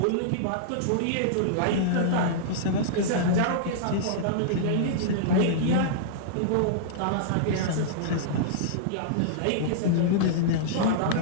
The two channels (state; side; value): different; both; correlation -0.02